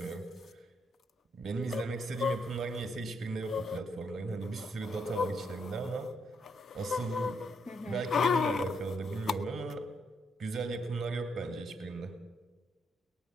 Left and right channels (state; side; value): normal; both; correlation 0.75